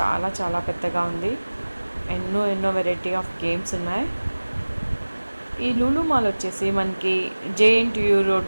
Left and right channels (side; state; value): both; inverted; correlation -1.00